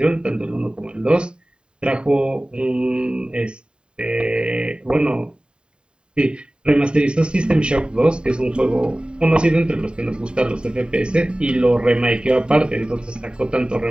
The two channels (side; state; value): left; late; 0.050 ms